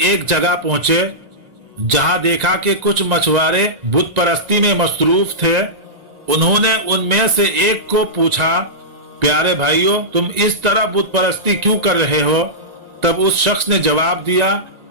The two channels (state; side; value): late; left; 1.9 ms